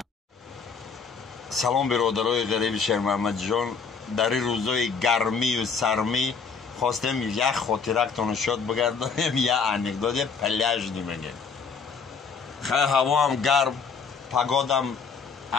салом биродарои ғариби шермаҳмадҷон, дар ин рӯзои гармию сармӣ хостем як хотирактон шод бигардонем, як анекдоти пляжни мегем. хай ҳавоам гарм, погодам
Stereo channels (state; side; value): quieter; right; 5.5 dB